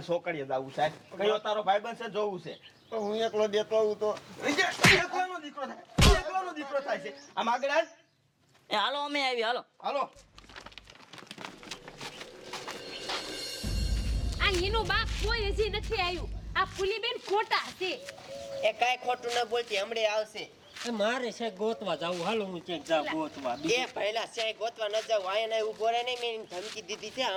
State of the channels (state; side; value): identical; both; correlation 1.00